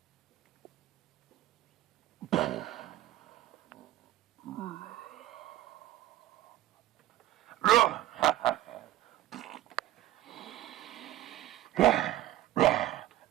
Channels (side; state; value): left; quieter; 14.3 dB